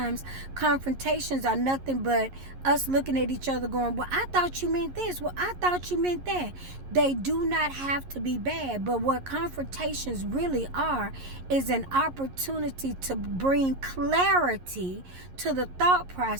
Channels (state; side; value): late; left; 11 ms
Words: confrontations are nothing but us looking at each other going, well, I thought you meant this. Well, I thought you meant that. They do not have to be bad. But what confrontations really are is an opportunity to bring clarity to the thought